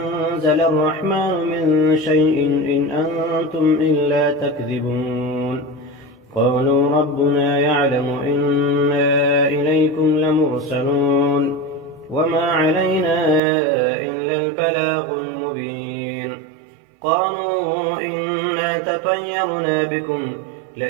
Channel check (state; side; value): drops out; left; at 13.4 s